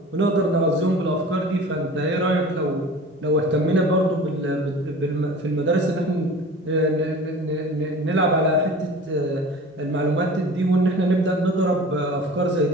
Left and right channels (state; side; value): normal; both; correlation 0.40